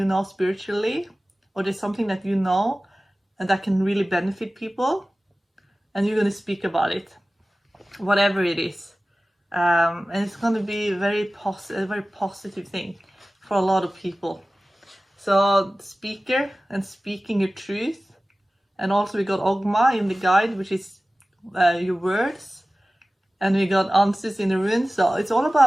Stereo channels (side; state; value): both; normal; correlation 0.96